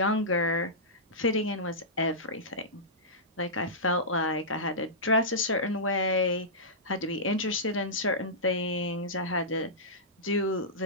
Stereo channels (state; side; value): normal; both; correlation -0.16